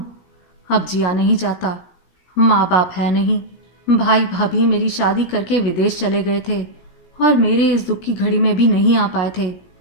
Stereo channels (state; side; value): late; right; 17 ms